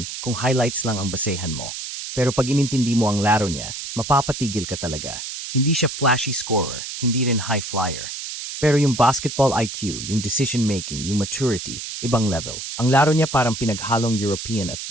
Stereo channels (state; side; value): noise; right; hiss, 7 dB below the sound